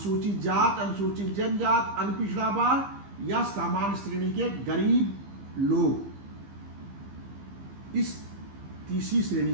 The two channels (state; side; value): late; left; 15 ms